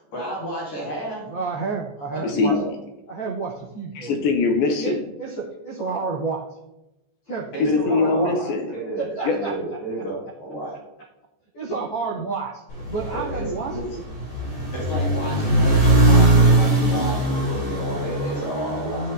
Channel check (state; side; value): late; right; 14 ms